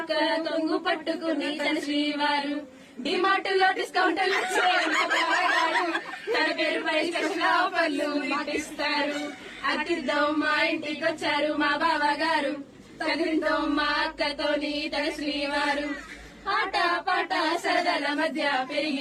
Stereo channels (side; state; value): both; identical; correlation 1.00